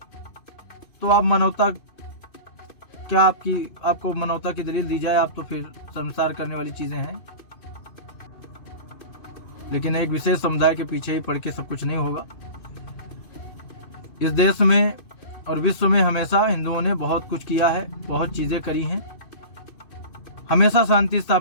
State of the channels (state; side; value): late; right; 2.5 ms